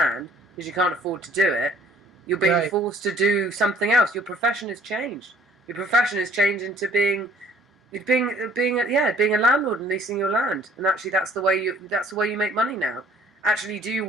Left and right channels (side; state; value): both; normal; correlation 0.56